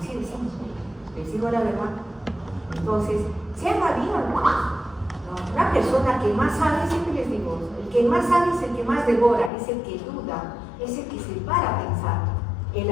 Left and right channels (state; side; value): drops out; right; at 9.5 s